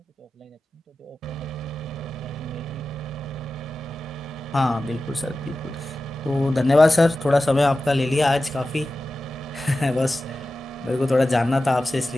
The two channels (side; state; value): both; normal; correlation 0.94